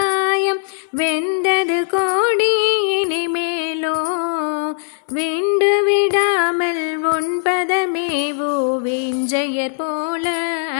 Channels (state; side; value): silent; right; 58 dB below the other